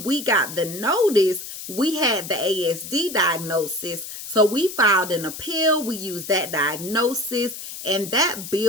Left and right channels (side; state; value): left; noise; hiss, 10 dB below the sound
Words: we got the notice, we had the ASD diagnosis. So we filed an appeal. We used that diagnosis, and that